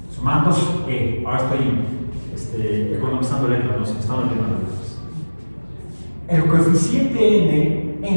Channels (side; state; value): both; inverted; correlation -1.00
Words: Ahora estoy economizando letras, no se me están olvidando letras. El coeficiente